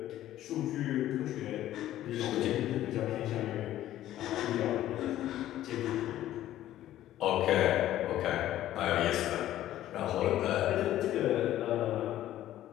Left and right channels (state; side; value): quieter; right; 13.3 dB